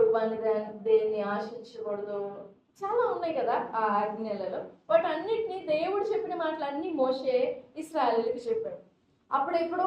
వాని దేన్ని ఆశించకూడదు, చాలా ఉన్నాయి కదా ఆ ఆజ్ఞలలో. బట్ అన్నిటినీ దేవుడు చెప్పిన మాటలన్నీ మోషే ఇశ్రాయేలుకి చెప్పాడు.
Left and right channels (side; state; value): both; identical; correlation 1.00